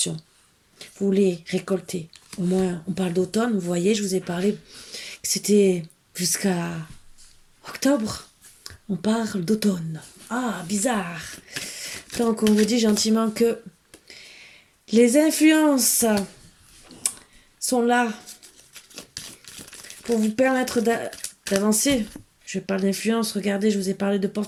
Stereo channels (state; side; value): identical; both; correlation 1.00